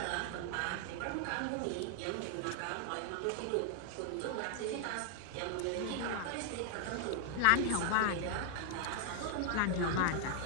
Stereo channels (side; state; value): both; different; correlation 0.00